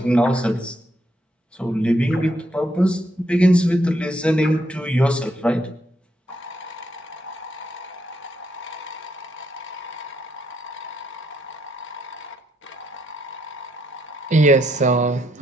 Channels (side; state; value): both; normal; correlation 0.76